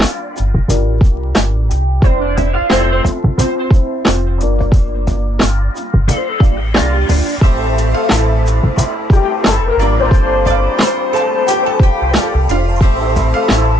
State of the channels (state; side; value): normal; both; correlation 0.79